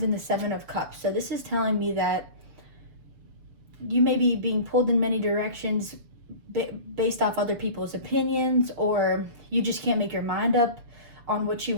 and the Seven of Cups. So this is telling me that you may be being pulled in many directions based off other people's opinions, or you just can't make your mind up on what you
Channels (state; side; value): late; left; 7.0 ms